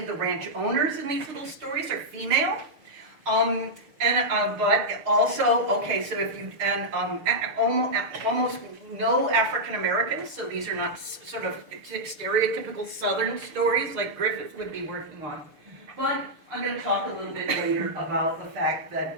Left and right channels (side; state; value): left; late; 6.8 ms